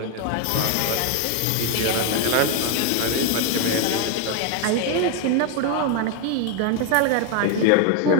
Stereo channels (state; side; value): different; both; correlation 0.01